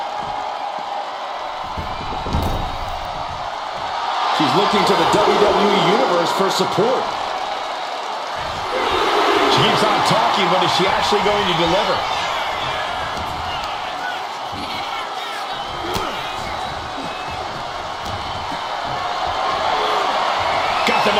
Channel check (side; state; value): both; identical; correlation 1.00